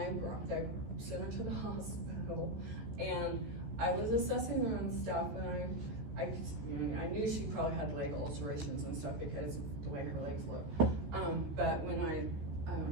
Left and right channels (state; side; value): late; left; 14 ms